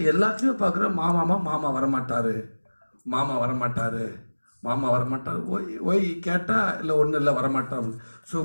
எல்லாத்துலேயும் பார்க்குறோம் மாமா வரமாட்டார். ஒய் கேட்டால் இல்லை ஒன்றும் இல்லை வரமாட்டார். ஸோ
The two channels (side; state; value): both; inverted; correlation -1.00